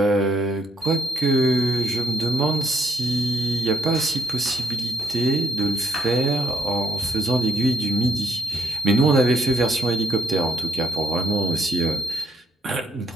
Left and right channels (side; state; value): both; normal; correlation 0.76